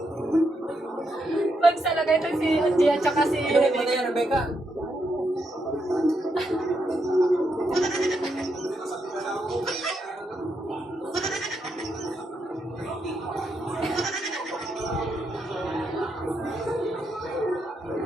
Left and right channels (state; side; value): normal; both; correlation 0.80